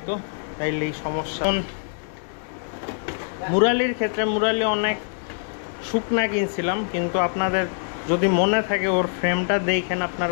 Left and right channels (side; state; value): right; silent; digital silence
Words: তাইলে এই সমস্যা। মুরালির ক্ষেত্রে, মুরালি অনেক শুকনা কিনছিলাম, কিন্তু আপনাদের যদি মনে থাকে ওর ফ্রেমটা দেখেন আপনার